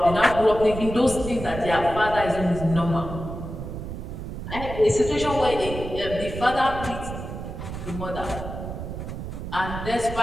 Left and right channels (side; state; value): right; noise; rumble, 8 dB below the sound